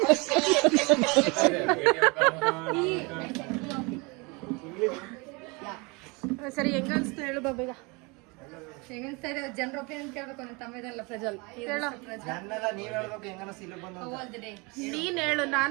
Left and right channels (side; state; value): left; quieter; 27.9 dB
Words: ಸರಿ, ಹೆಂಗ ಅನ್ಸ್ತು ಹೇಳು ಬಾಬೀಗ. ಹೆಂಗನ್ಸ್ತಾ ಇದೆ ಜನರ ಒಪಿನಿಯನ್ ಕೇಳ್ಬೇಕು. ನನ್ನ ತಮ್ಮ ಇದಲ್ಲ ಪ್ರಜ್ವಲ್. ನನ್ನೆಲ್ಲ ನೀವ್ ಹೇಳ್ಬೇಕು ಹೆಂಗ ಅನಿಸ್ತು ಇಲ್ಲಿ ಬಂದು. ನೀನ್ ಹೇಳು,